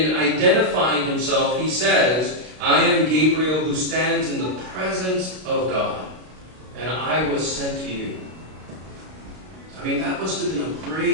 identifying himself, he says, I am Gabriel who stands in the presence of God, and I was sent to you. I mean, that must have been a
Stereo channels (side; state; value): left; late; 32 ms